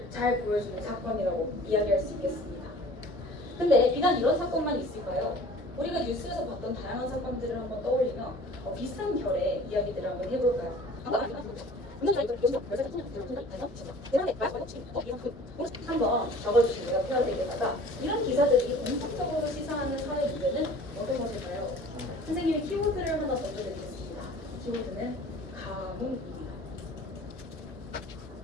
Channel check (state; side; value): normal; both; correlation 0.46